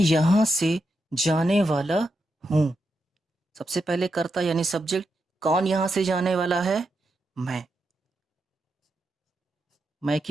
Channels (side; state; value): both; normal; correlation 0.85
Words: से जाने वाला हूं। सबसे पहले कर्ता यानी सब्जेक्ट, कौन यहां से जाने वाला है, मैं